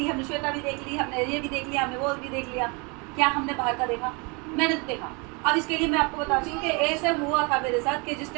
हमने श्वेता भी देख ली, हमने ये भी देख लिया, हमने वो भी देख लिया, क्या हमने बाहर का देखा? मैंने तो देखा। अब इसके लिए मैं आपको बताती हूँ कि ऐसे हुआ था मेरे साथ कि जिस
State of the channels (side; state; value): left; quieter; 30.5 dB